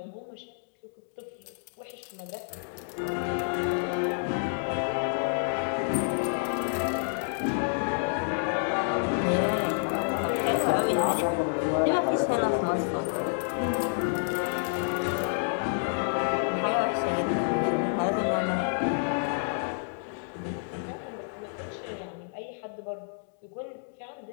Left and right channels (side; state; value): right; silent; digital silence